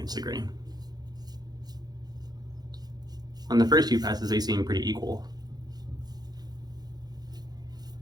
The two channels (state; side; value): late; left; 0.19 ms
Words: the grain. On the first few passes, they seem pretty equal.